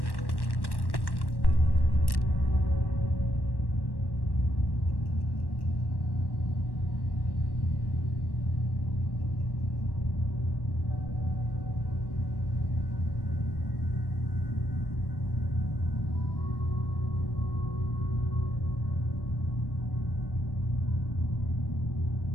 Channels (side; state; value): right; late; 1.1 ms